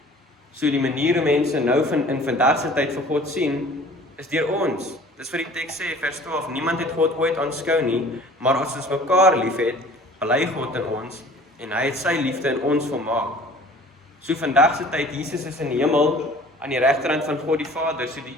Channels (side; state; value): both; normal; correlation 0.48